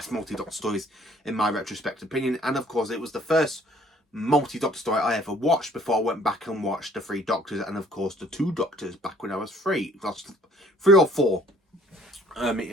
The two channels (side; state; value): both; normal; correlation 0.58